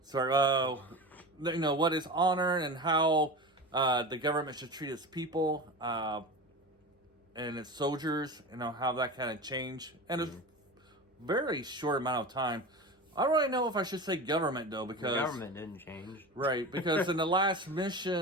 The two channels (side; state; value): both; normal; correlation 0.29